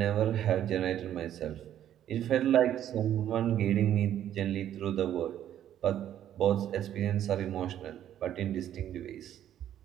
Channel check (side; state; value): left; quieter; 11.0 dB